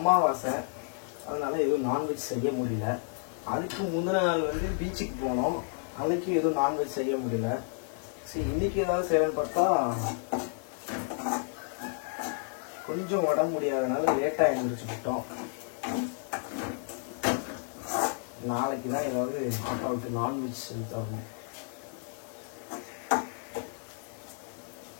அதனால எதுவும் நான்வெஜ் செய்ய முடியல. அதுக்கு முந்தின நாள் வந்து பீச்சுக்கு போனோம், அன்னைக்கு எதுவும் நான்வெஜ் செய்ய முடியல. சரி இன்னைக்கு ஏதாவது செய்யணும்னு பார்த்தா கொஞ்சம் உடம்பு முடியாதனால லேட்டாக எழுந்திரிச்சுக்கிட்டோம். நாளைக்கு தான் ஏதாவது அப்பாவுக்கு நான்வெஜ் செஞ்சு தரணும்.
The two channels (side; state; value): right; silent; 56 dB below the other